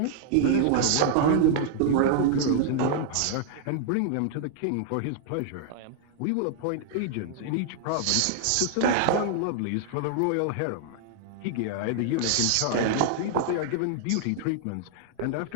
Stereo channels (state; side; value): different; both; correlation -0.01